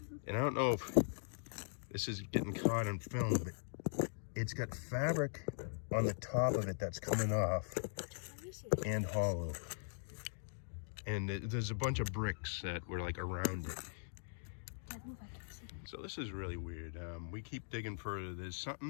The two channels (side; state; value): right; silent; digital silence